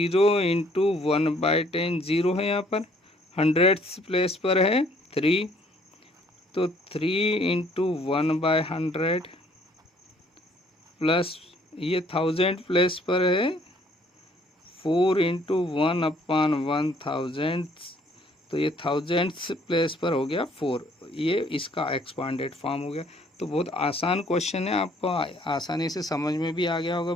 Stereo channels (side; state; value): both; normal; correlation 0.61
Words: × 1/10, 0 है यहाँ पर। 100th प्लेस पर है 3, तो 3 × 1/100। प्लस ये 1000 प्लेस पर है 4 × 1/1000, तो ये 1000th प्लेस पर हो गया 4। ये इसका एक्सपांडेड फॉर्म हो गया। तो बहुत आसान क्वेश्चन है, आपको आसानी से समझ में भी आ गया होगा